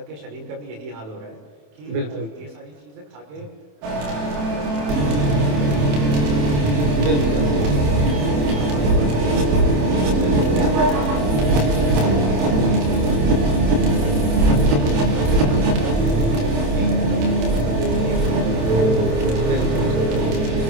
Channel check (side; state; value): left; late; 27 ms